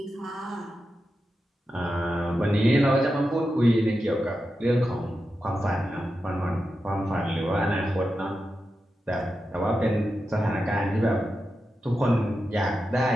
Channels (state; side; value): normal; both; correlation 0.90